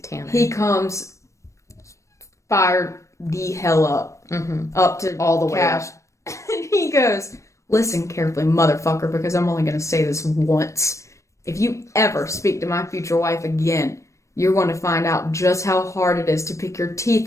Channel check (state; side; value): late; right; 0.15 ms